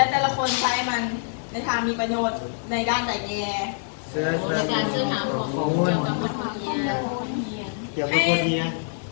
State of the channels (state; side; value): silent; right; 62 dB below the other